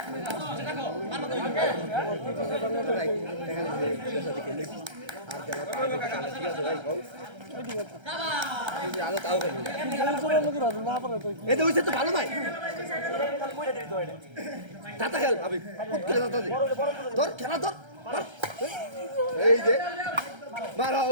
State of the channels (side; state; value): left; late; 1.3 ms